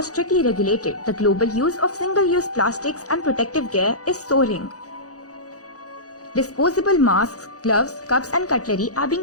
strictly regulated, the global use of single-use plastics and protective gear is soaring. Disposable masks, gloves, cups and cutlery are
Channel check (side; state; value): right; late; 0.67 ms